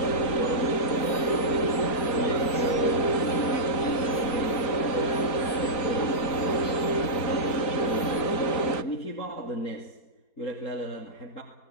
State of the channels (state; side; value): late; right; 4.2 ms